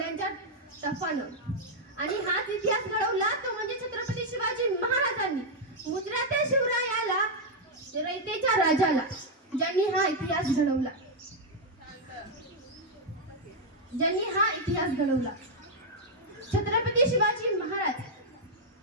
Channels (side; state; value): both; normal; correlation -0.02